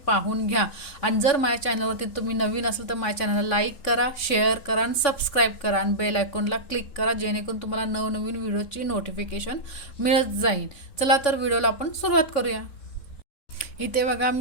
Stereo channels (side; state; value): right; late; 3.6 ms